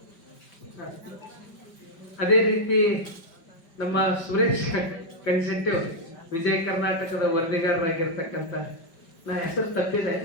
ಅದೇ ರೀತಿ ನಮ್ಮ ಸುರೇಶ್ ಕನ್ಸೆಂಟಿವ್ ವಿಜಯ ಕರ್ನಾಟಕದ ವರದಿಗಾರರಾಗಿರ್ತಕ್ಕಂಥ ನಾ ಹೆಸರು ತಪ್ಪಿದೆ,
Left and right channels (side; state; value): right; late; 5.2 ms